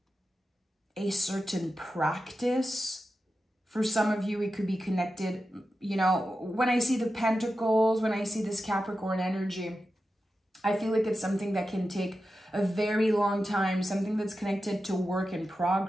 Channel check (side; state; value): both; normal; correlation 0.91